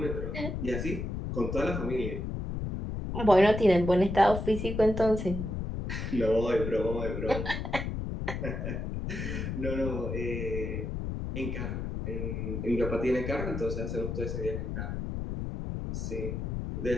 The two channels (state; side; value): noise; left; rumble, 4 dB below the sound